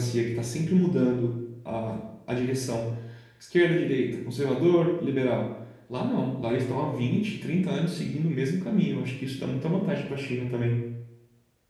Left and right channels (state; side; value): identical; both; correlation 1.00